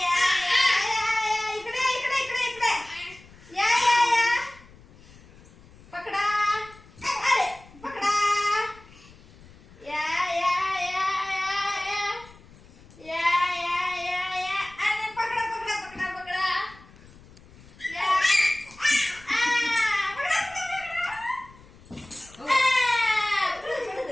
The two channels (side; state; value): left; noise; rumble, 23 dB below the sound